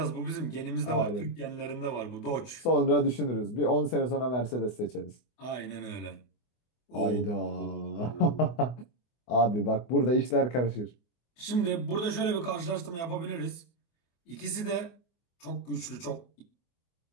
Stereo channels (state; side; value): late; right; 24 ms